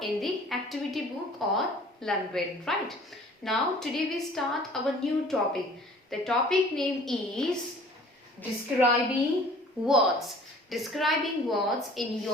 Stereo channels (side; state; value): both; normal; correlation 0.49